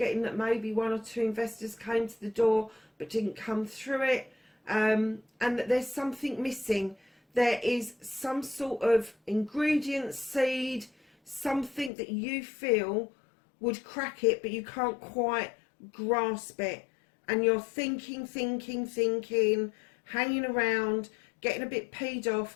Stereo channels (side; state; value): right; drops out; at 11.9 s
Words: that maybe one or two investors came to the door but didn't come through it, and that there's something missing. There is some sort of ingredient, seed, something that you feel would crack it, but you can't quite grasp it. And you're thinking, hanging around, getting a bit peed